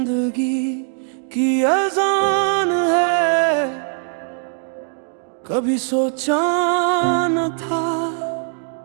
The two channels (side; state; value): left; silent; 65 dB below the other